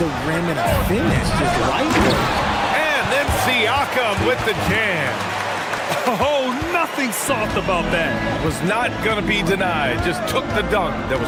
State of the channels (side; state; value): both; identical; correlation 1.00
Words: rim and a finish. Just right there. And then Siakam with the jam. Oh, nothing soft about that. Was not going to be denied. Just took the dunk that was